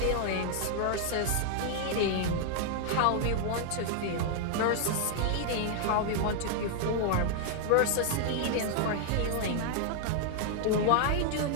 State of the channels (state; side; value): different; both; correlation 0.00